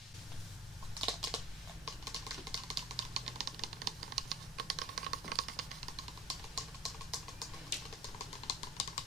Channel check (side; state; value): both; normal; correlation 0.45